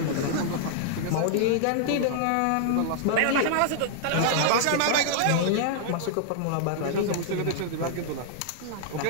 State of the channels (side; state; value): both; different; correlation -0.01